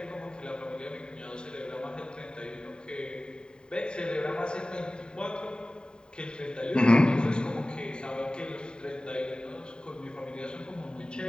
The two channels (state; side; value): late; right; 0.048 ms